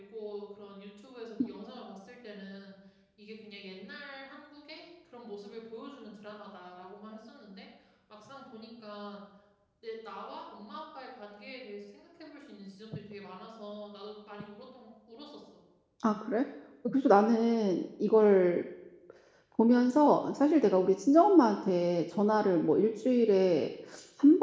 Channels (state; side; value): identical; both; correlation 1.00